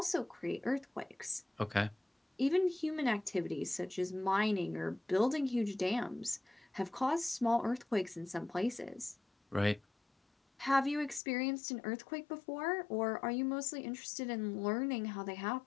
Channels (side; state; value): right; drops out; at 11.2 s